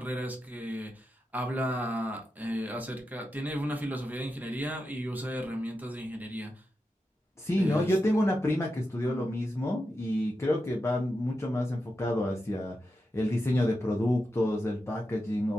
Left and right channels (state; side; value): normal; both; correlation 0.89